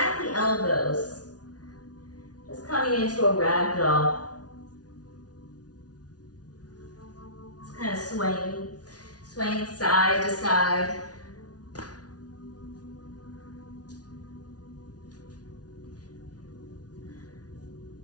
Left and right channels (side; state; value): right; late; 0.69 ms